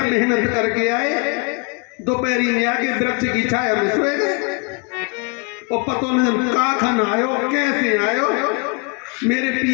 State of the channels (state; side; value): quieter; right; 32.5 dB